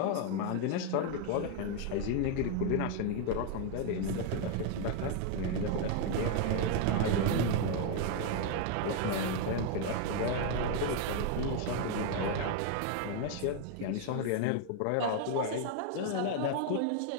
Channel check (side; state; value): both; different; correlation 0.01